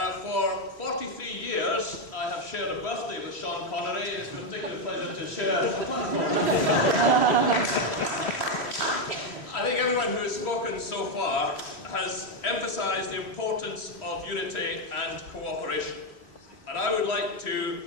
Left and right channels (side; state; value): right; late; 3.1 ms